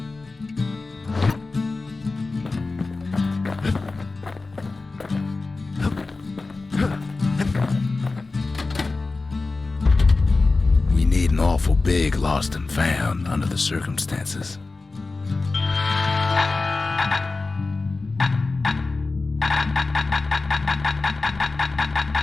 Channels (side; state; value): right; quieter; 3.6 dB